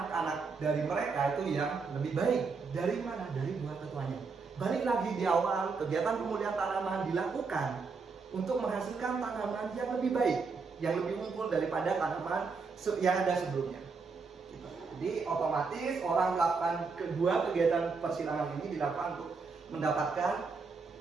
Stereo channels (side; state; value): left; quieter; 4.7 dB